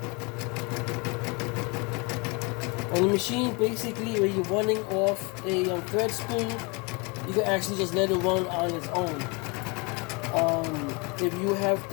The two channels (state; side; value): quieter; right; 29.7 dB